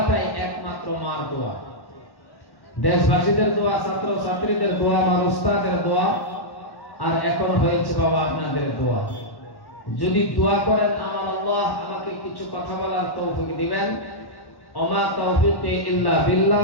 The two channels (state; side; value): late; right; 1.1 ms